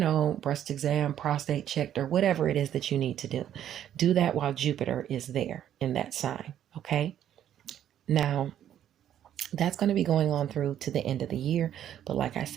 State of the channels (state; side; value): quieter; left; 10.7 dB